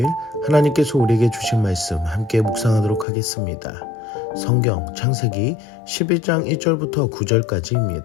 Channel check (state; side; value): drops out; right; at 3.1 s